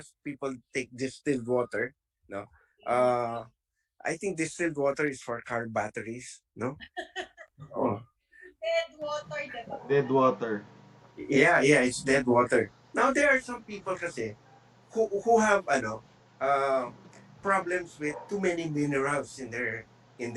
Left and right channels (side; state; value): both; identical; correlation 1.00